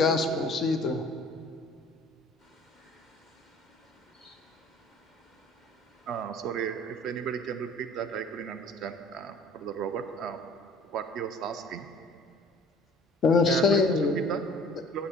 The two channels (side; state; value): both; normal; correlation 0.50